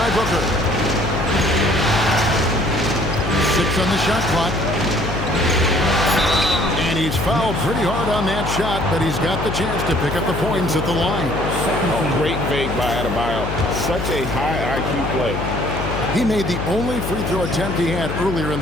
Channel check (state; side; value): noise; left; hum, 4 dB below the sound